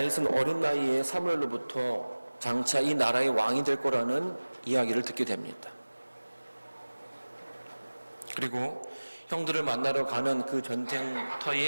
어린 나이에 사무엘로부터 장차 이 나라의 왕이 될 거라는 이야기를 듣게 됩니다. 그리고 형들을 만나러 가는 그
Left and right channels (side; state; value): both; inverted; correlation -1.00